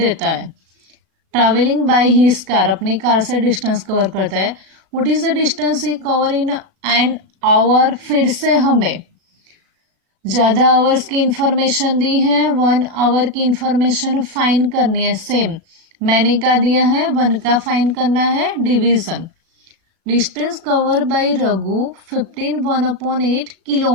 है। ट्रैवलिंग बाय हिज कार, अपनी कार से डिस्टेंस कवर करता है। What is the distance he cover in an hour, फिर से हमें ज्यादा आवर्स की इंफॉर्मेशन दी है, 1 आवर की इंफॉर्मेशन फाइंड करनी है। सेम मैंने क्या दिया है, 1 का फाइंड करना है division. Distance cover by Raghu 15 1/8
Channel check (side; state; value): left; late; 37 ms